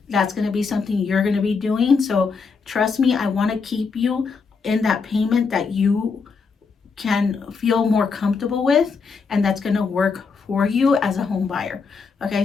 That's going to be something you're going to be doing. So trust me, I want to keep you in that payment that you can feel more comfortable with, and that's going to work for you as a home buyer. Okay,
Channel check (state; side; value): quieter; right; 5.1 dB